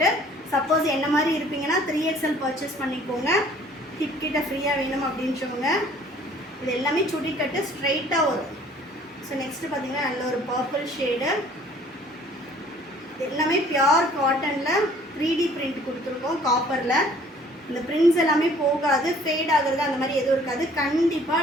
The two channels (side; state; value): both; normal; correlation 0.55